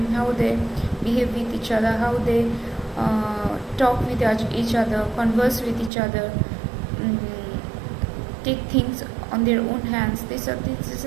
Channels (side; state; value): left; drops out; at 5.9 s